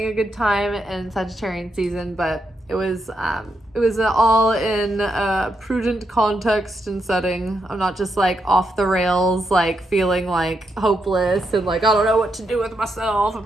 a good time in Sagittarian season, but it was all in a prudent context and setting. I'm not just like off the rails, like feeling like hopeless and like I don't know what to do with myself,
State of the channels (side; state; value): both; normal; correlation 0.82